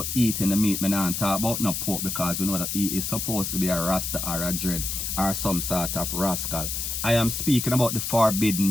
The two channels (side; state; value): left; noise; hiss, 3 dB below the sound